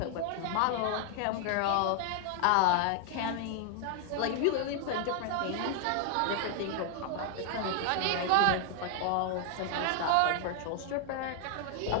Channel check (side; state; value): both; different; correlation 0.00